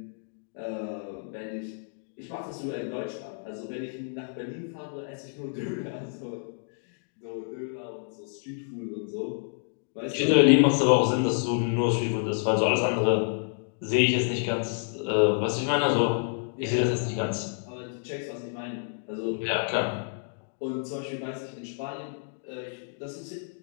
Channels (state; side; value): silent; right; digital silence